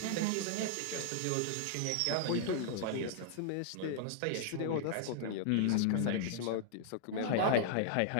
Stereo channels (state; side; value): different; both; correlation -0.01